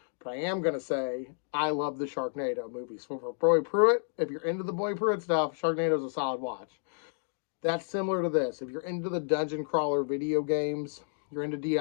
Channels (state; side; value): silent; right; digital silence